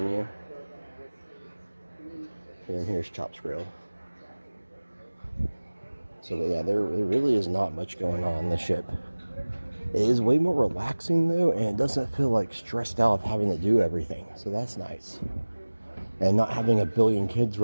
And here's Chops Grill. So, yeah, there really is not much going on the ship. It is way more relaxing, though, and it doesn't feel like stressed out of having to do everything. So that's nice. And not having a billion kids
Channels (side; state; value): both; inverted; correlation -1.00